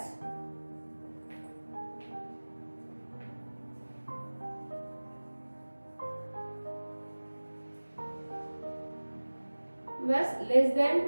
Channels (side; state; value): both; inverted; correlation -1.00